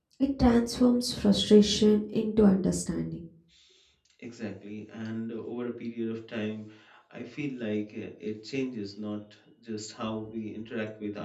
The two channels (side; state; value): both; identical; correlation 1.00